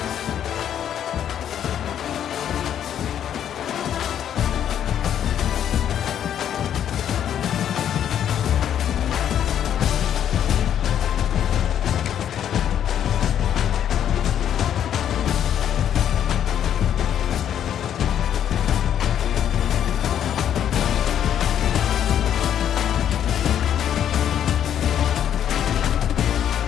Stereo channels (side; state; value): right; quieter; 9.8 dB